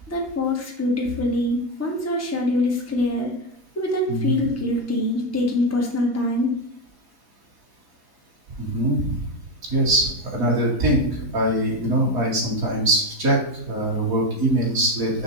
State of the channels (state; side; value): late; left; 4.2 ms